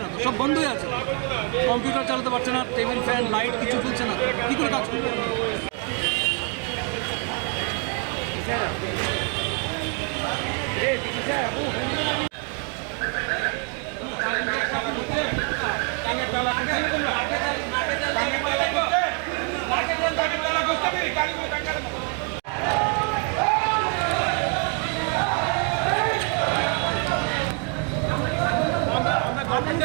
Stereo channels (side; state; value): left; quieter; 37.1 dB